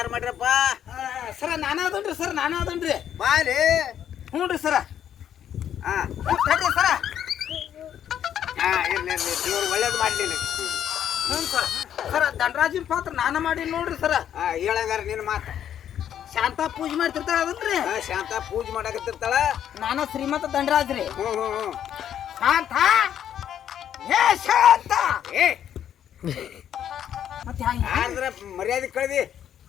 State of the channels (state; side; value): quieter; right; 9.9 dB